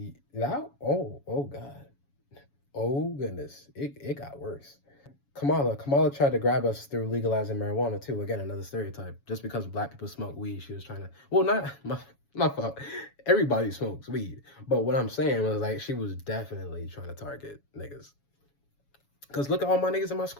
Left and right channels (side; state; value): right; late; 7.2 ms